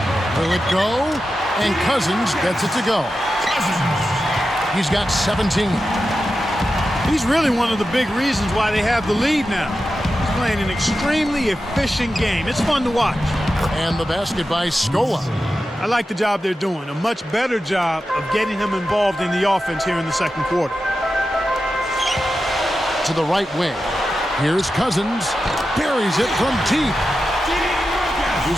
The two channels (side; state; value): both; normal; correlation 0.91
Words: Will it go? And Cousins gets it to go. He's got 17. He's really one of the big reasons why they have the lead now. He's playing an extremely efficient game. It's fun to watch. And the basket by Scola. I like the job they're doing. A much better job of getting him involved in the offense here in the second quarter. To the right wing. Here's Cousins. Buries it from deep.